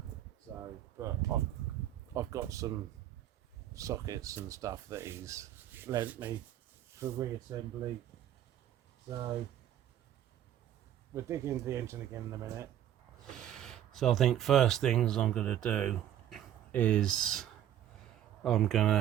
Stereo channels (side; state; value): left; quieter; 11.3 dB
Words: So, but I've got some sockets and stuff that he's lent me for reassembly. So we'll dig into the engine again in a minute. So I think first things I'm going to do is I'm going